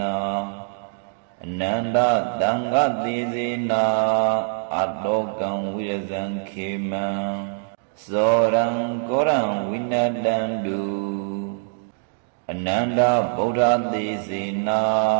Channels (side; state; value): left; silent; digital silence